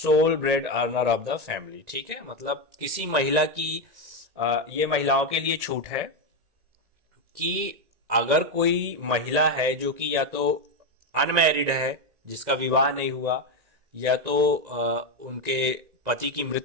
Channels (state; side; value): late; left; 1.9 ms